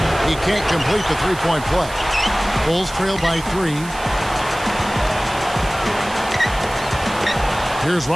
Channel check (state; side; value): noise; right; hiss, 16 dB below the sound